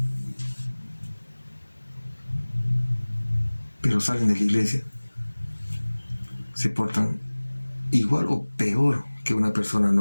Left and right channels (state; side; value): inverted; both; correlation -1.00